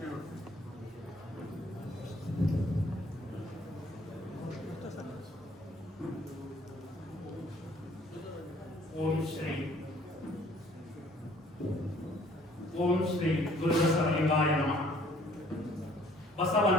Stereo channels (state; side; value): normal; both; correlation 0.58